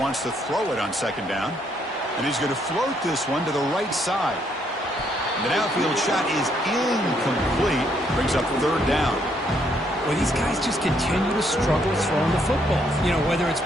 to throw it on second down, and he's going to float this one to the right side. The downfield shot is incomplete. Brings up third down. Well, these guys just continue to struggle throwing the football. You know, whether it's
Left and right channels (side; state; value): both; normal; correlation 0.71